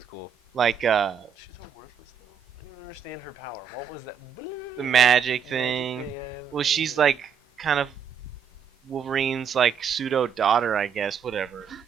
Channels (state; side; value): quieter; left; 7.2 dB